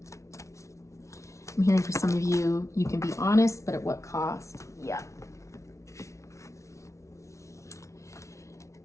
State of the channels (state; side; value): late; right; 0.14 ms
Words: I'm hearing for some of you, you can be honest, but at what cost? Yeah.